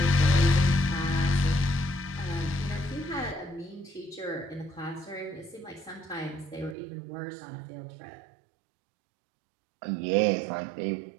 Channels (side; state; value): left; drops out; at 6.8 s